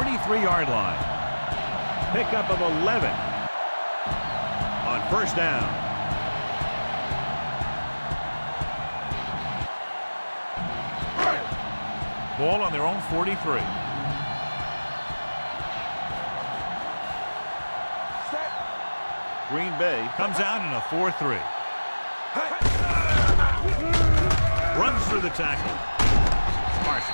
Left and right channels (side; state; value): both; inverted; correlation -1.00